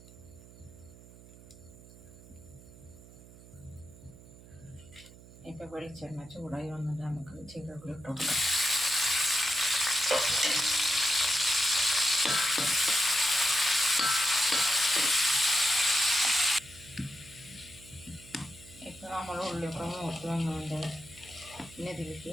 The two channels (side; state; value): right; noise; hum, 20 dB below the sound